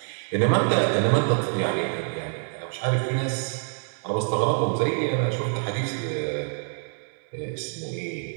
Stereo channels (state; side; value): silent; left; 57 dB below the other